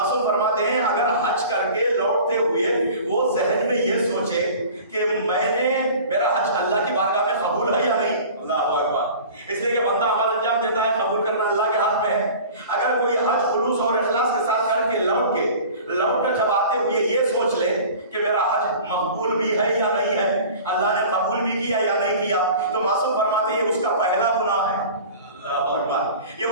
فرماتے ہیں اگر حج کر کے لوٹتے ہوئے وہ ذہن میں یہ سوچے کہ میرا حج اللہ کی بارگاہ میں قبول ہے یا نہیں. اللہ اکبر. اس لیے کہ بندہ عمل انجام دیتا ہے، قبول کرنا اللہ کے ہاتھ میں ہے. اگر کوئی حج خلوص اور اخلاص کے ساتھ کر کے لوٹ کر جب آتے ہوئے یہ سوچ لے کہ میرا حج مقبول بھی ہے یا نہیں ہے، اللہ نے قبول بھی کیا یا نہیں کیا، تو معصوم فرماتے ہیں یہ اس کا پہلا گناہ ہے. یہ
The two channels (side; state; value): both; inverted; correlation -0.41